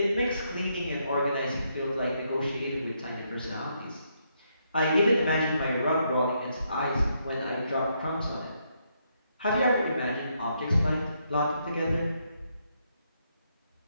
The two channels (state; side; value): inverted; both; correlation -0.77